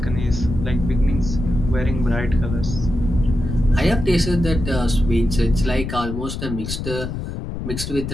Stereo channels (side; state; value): left; noise; rumble, 6 dB below the sound